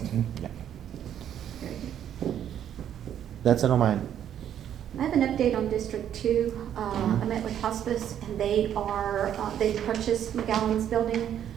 yeah. That's it on mine. I have an update on District 2. I met with hospice, and they purchased McGowan's building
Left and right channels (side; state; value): left; quieter; 10.0 dB